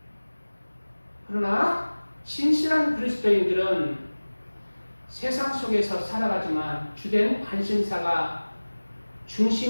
그러나 진실한 그리스도인들은 세상 속에서 살아가지만 주된 관심사가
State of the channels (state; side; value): inverted; both; correlation -1.00